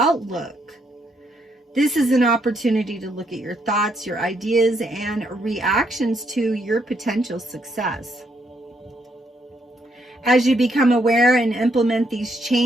This is an opportunity to look at your thoughts, your ideas, and reactions to your potential success. As you become aware and implement these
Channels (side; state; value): both; normal; correlation 0.75